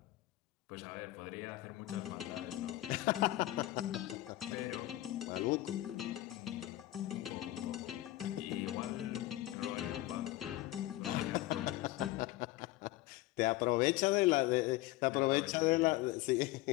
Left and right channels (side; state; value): right; quieter; 16.8 dB